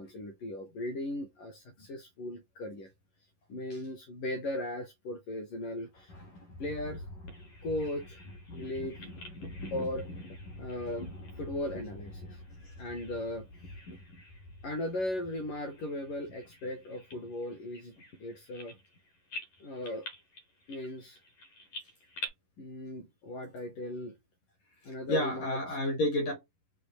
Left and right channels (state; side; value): late; right; 11 ms